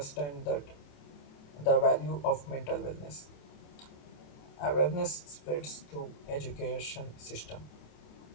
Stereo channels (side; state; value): right; late; 28 ms